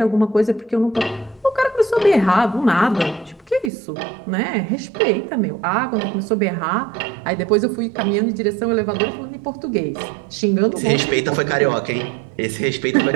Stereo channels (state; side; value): drops out; left; at 3.7 s